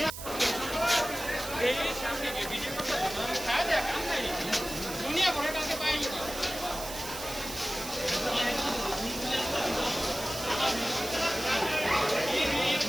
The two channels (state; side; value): noise; right; hiss, 10 dB below the sound